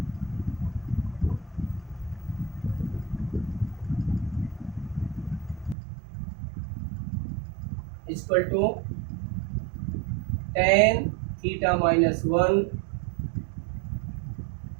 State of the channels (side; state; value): left; drops out; at 5.8 s